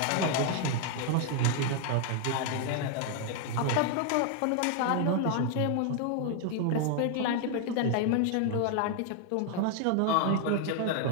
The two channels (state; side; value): different; both; correlation 0.00